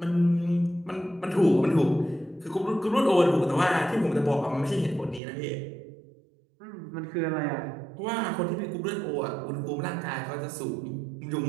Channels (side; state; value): left; drops out; at 5.2 s